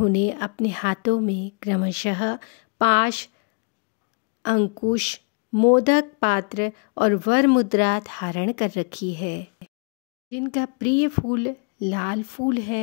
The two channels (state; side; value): quieter; right; 35.9 dB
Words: अपने हाथों में क्रमशः पाश, अंकुश, मोदक पात्र और वर मुद्रा धारण कर रखी है, जिनका प्रिय फूल लाल फूल